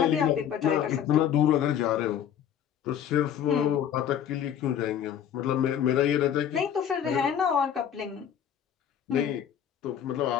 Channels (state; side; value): quieter; right; 9.3 dB